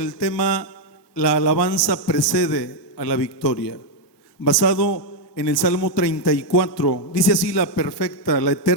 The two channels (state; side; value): late; right; 1.2 ms